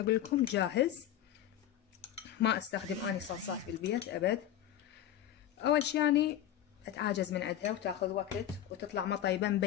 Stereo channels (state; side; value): quieter; right; 11.5 dB